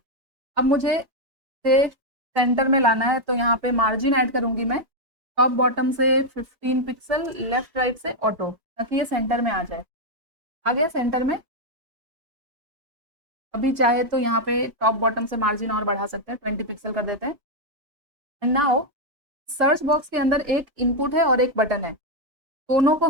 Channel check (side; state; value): left; late; 3.3 ms